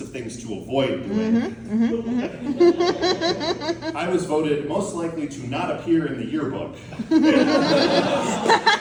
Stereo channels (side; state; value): both; identical; correlation 1.00